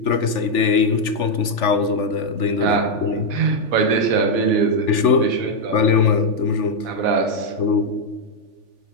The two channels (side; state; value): right; late; 3.4 ms